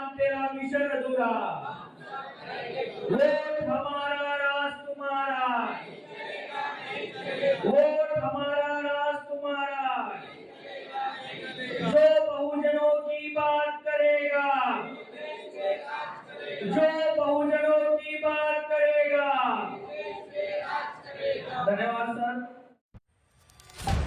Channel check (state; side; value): identical; both; correlation 1.00